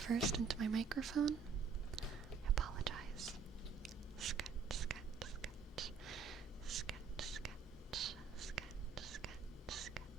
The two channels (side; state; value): left; quieter; 5.6 dB